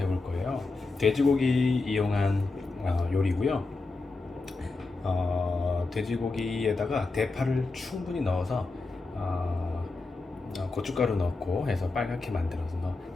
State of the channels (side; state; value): right; quieter; 3.6 dB